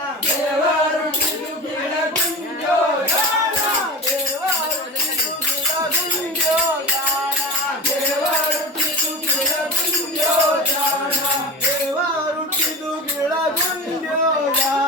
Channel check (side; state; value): both; normal; correlation 0.30